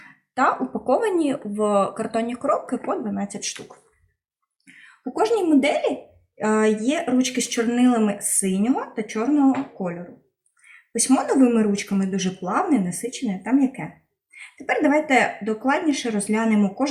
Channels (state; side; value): identical; both; correlation 1.00